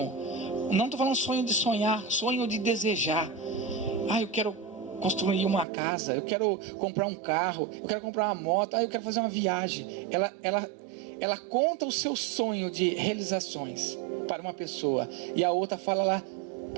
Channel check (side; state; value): left; drops out; at 5.7 s